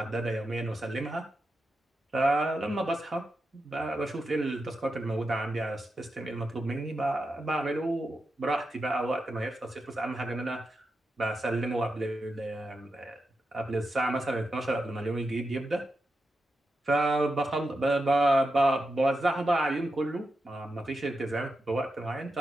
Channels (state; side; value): normal; both; correlation 0.88